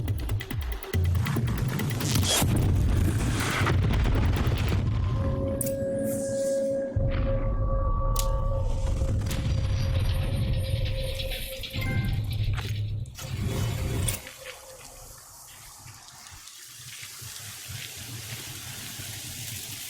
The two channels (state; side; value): identical; both; correlation 1.00